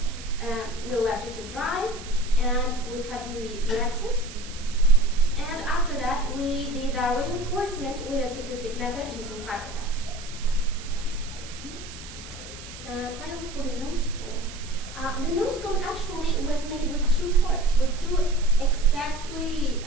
We left it to dry, and we cut the excess. And after that, we did our reinforcement with a tip-to-tip method using fiberglass. Finally, for the nose cone. The nose cone actually was made with two parts, with two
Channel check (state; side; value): noise; right; hiss, 14 dB below the sound